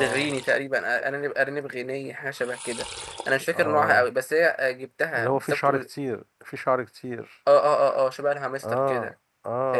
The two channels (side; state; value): both; identical; correlation 1.00